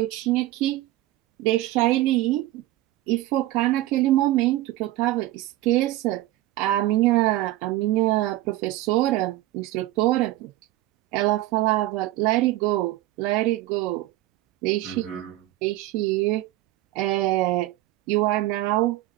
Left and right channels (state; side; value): quieter; left; 16.4 dB